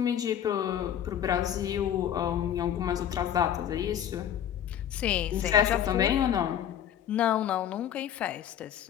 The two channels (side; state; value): right; quieter; 9.9 dB